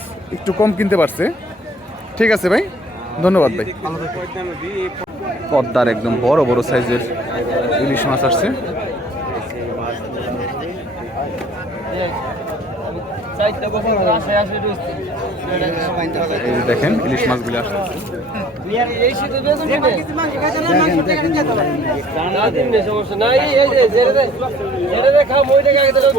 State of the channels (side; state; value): both; normal; correlation 0.53